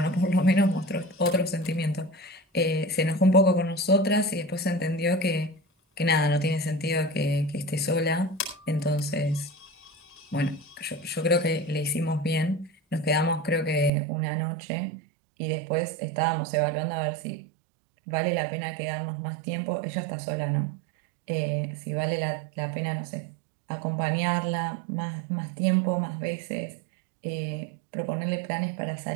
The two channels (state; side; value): drops out; left; at 13.9 s